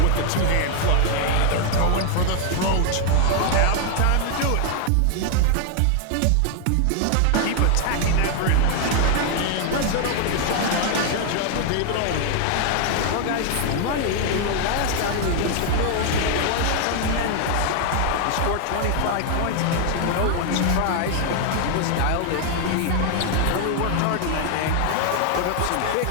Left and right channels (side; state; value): both; different; correlation 0.00